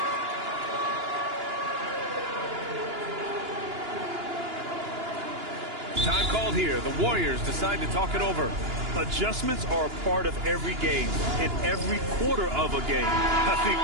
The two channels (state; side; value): late; left; 2.9 ms